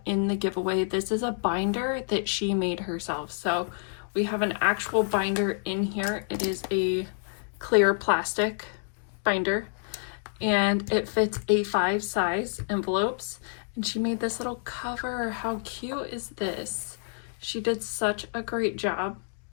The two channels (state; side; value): silent; right; digital silence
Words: in the giveaway. This is a binder that she made herself. So we have an actual binder in here. It is a clear plastic binder and it fits A5 size envelopes, and she made this little cover. How cute is this? She did such a great job